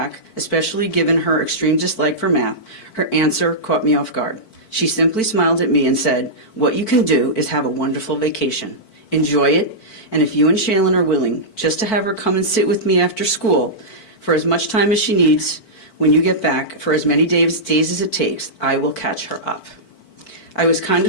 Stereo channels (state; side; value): late; right; 4.5 ms